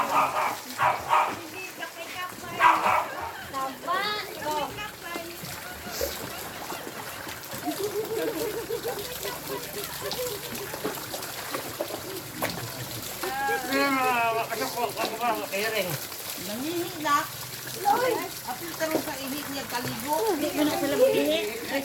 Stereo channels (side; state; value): both; identical; correlation 1.00